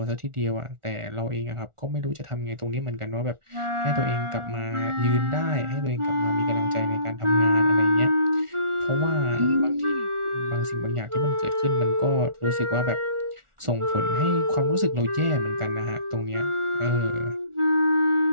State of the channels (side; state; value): left; late; 1.4 ms